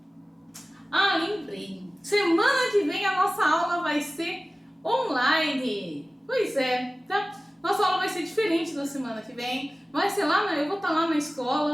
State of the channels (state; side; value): normal; both; correlation 0.97